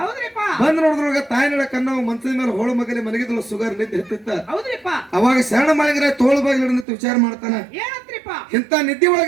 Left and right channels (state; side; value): drops out; left; at 6.9 s